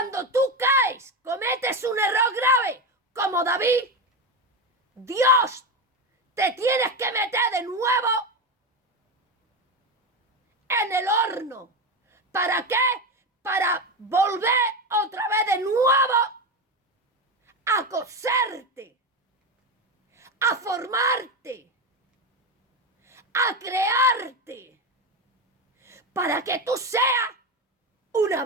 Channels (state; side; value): normal; both; correlation 0.15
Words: tú caes, cometes un error grave, como David, Dios te tienes que meter de nuevo en el horno. ¿Para qué? Para volver otra vez de nuevo a coserte, a formarte, a crearte, para que tú seas una